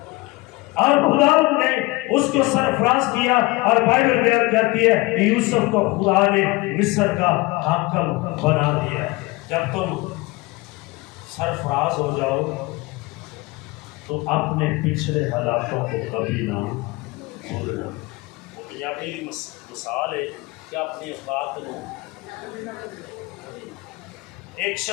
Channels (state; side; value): quieter; right; 22.9 dB